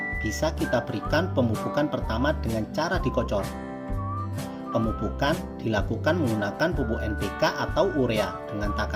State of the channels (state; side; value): identical; both; correlation 1.00